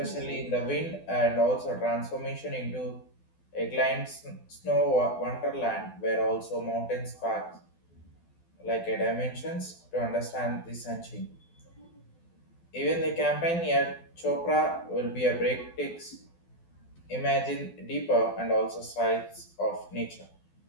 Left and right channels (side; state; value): right; late; 12 ms